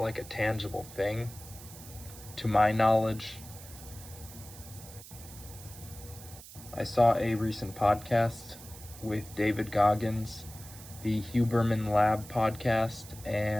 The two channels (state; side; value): noise; right; hiss, 16 dB below the sound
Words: a tangible thing, to my knowledge. I saw a recent podcast with David Goggins, the Huberman Lab podcast,